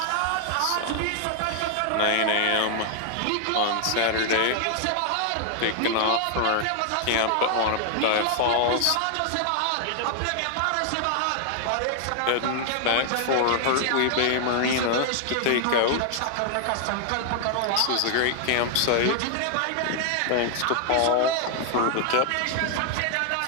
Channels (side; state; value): both; different; correlation 0.00